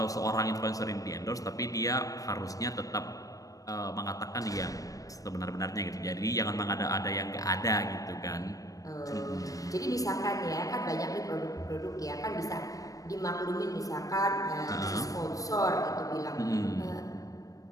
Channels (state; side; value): late; right; 0.17 ms